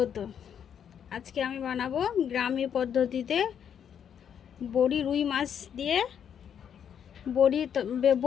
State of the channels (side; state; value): right; quieter; 8.4 dB